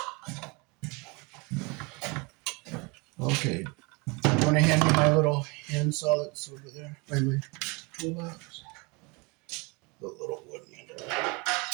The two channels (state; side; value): quieter; left; 28.6 dB